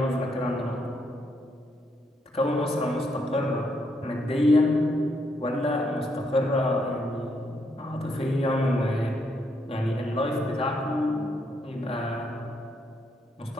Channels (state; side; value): normal; both; correlation 0.76